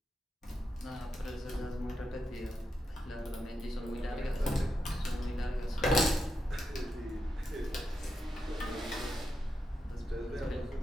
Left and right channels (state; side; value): normal; both; correlation 0.86